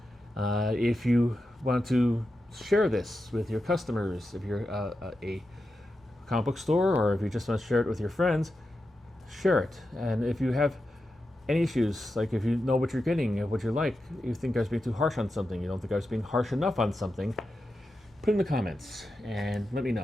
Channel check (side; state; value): both; normal; correlation 0.90